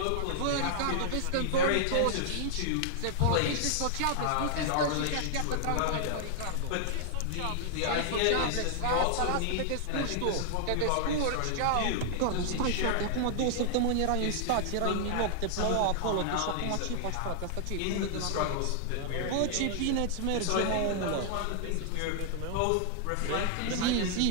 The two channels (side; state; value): both; different; correlation 0.00